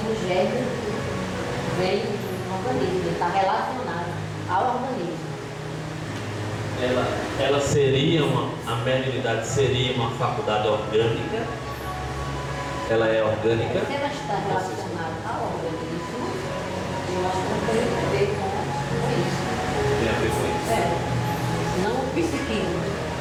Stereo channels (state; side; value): identical; both; correlation 1.00